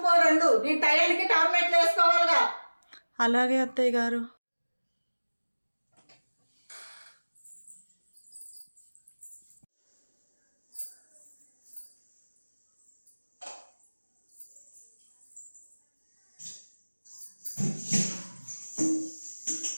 పో 2. నీ టైంకి టాబ్లెట్లు వేసుకోవాలిగా. అలాగే అత్తయ్య గారు.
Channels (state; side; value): inverted; both; correlation -1.00